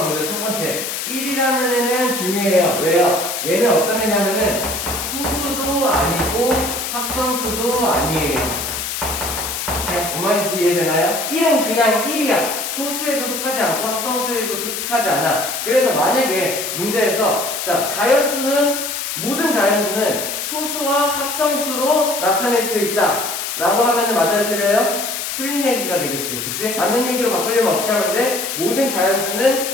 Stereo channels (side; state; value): left; noise; hiss, 4 dB below the sound